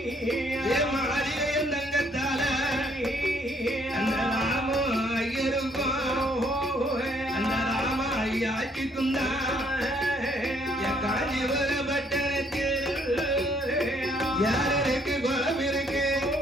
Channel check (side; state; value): both; normal; correlation 0.66